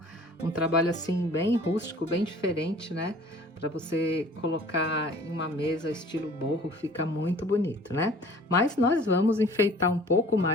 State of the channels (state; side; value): normal; both; correlation 0.49